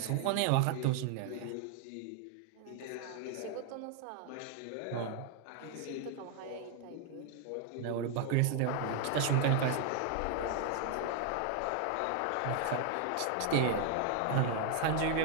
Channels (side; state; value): both; different; correlation 0.00